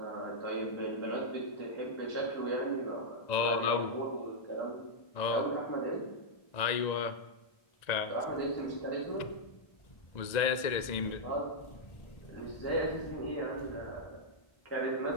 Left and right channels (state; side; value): late; right; 1.9 ms